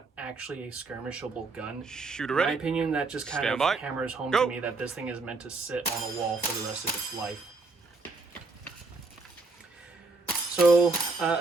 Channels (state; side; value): quieter; left; 3.7 dB